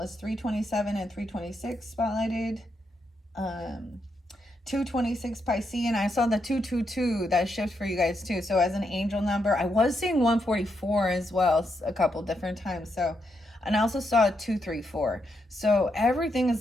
3/27 and 3/26 spotlighted. 2/26 Piscean. I saw the 2/22 that shift for you guys too. So as an angel number, I was seeing 144 as well a couple different times. So, and I also saw 234. So everything is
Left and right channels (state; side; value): normal; both; correlation 0.81